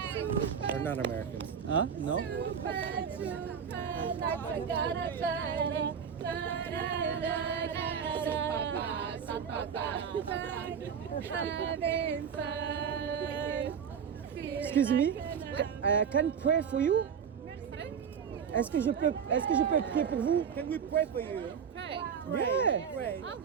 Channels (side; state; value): left; quieter; 7.3 dB